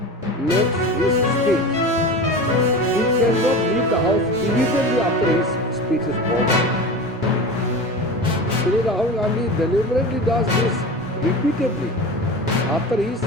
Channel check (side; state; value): both; normal; correlation 0.30